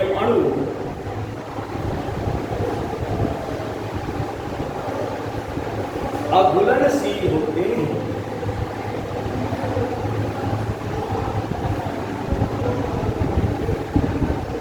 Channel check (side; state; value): both; identical; correlation 1.00